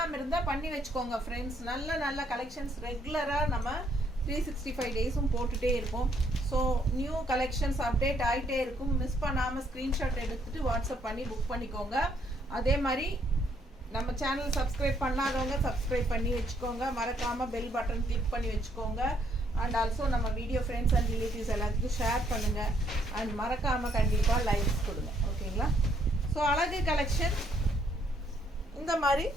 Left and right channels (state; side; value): normal; both; correlation 0.70